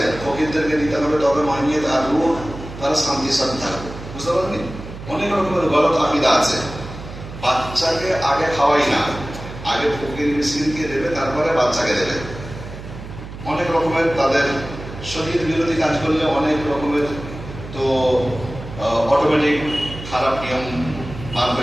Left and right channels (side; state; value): right; noise; hum, 12 dB below the sound